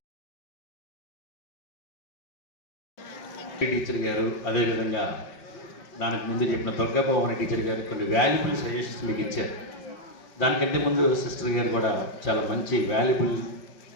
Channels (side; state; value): right; late; 5.9 ms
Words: Teacher గారు, అదేవిధంగా దానికి ముందు చెప్పిన దుర్గాభవన టీచర్ గారు కొన్ని వాల్యుబుల్ సజెషన్స్ మీకు ఇచ్చారు. దానికంటే ముందు సిస్టర్ గారు కూడా చాలా మంచి వాల్యుబుల్